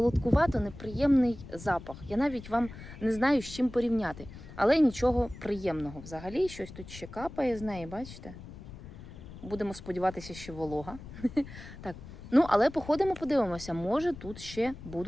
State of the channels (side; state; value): left; noise; rumble, 14 dB below the sound